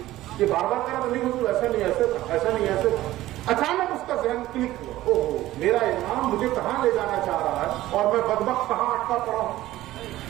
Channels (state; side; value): quieter; left; 15.6 dB